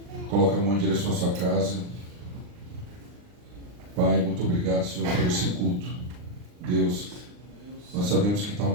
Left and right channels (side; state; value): left; late; 39 ms